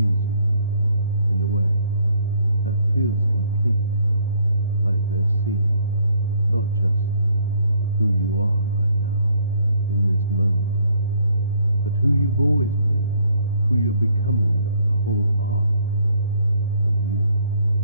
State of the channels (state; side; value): inverted; both; correlation -0.65